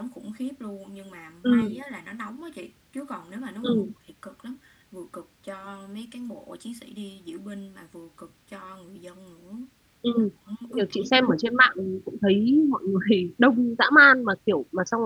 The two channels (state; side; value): identical; both; correlation 1.00